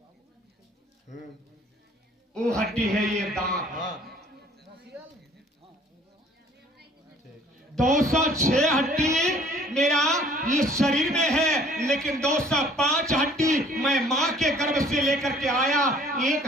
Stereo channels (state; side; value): normal; both; correlation 0.56